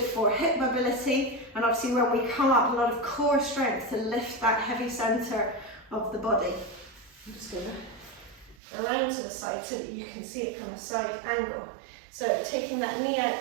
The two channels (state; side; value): drops out; left; at 8.6 s